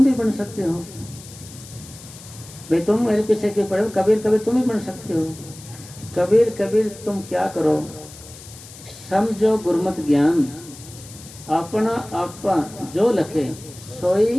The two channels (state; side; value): noise; left; hiss, 18 dB below the sound